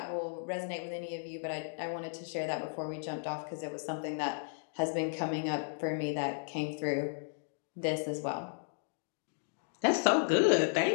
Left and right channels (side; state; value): right; silent; digital silence